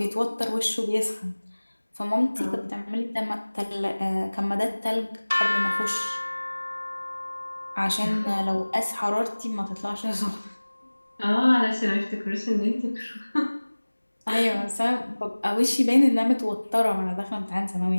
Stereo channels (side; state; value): both; inverted; correlation -1.00